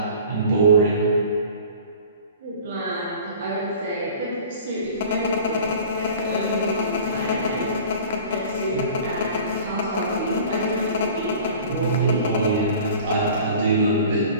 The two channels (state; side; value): inverted; both; correlation -0.43